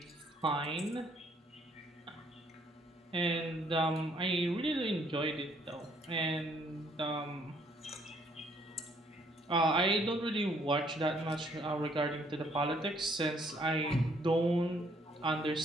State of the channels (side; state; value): both; normal; correlation 0.66